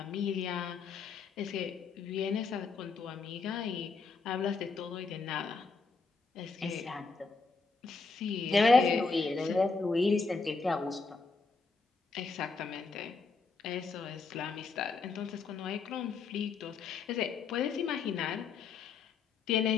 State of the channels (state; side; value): quieter; right; 4.5 dB